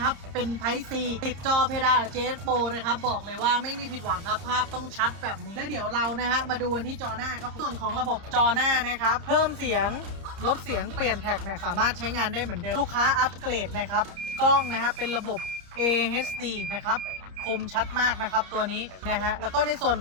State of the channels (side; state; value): left; late; 30 ms